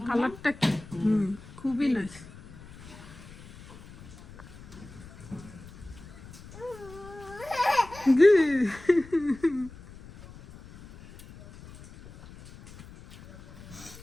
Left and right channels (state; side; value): noise; left; rumble, 18 dB below the sound